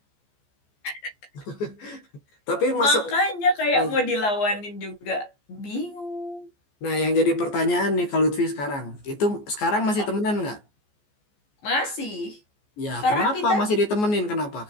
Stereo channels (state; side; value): late; right; 14 ms